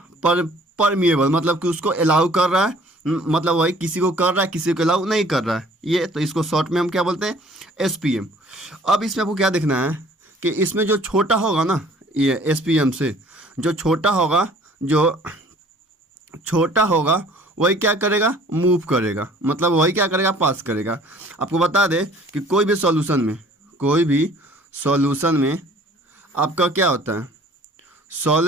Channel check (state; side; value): normal; both; correlation 0.53